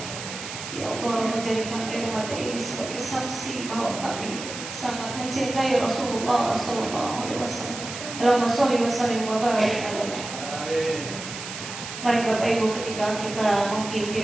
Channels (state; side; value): noise; right; hiss, 9 dB below the sound